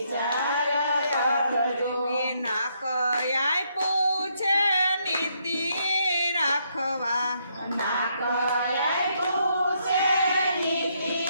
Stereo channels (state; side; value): inverted; both; correlation -0.74